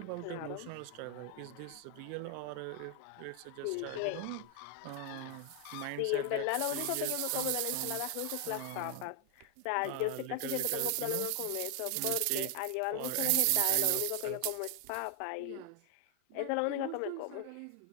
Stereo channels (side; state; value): both; different; correlation 0.01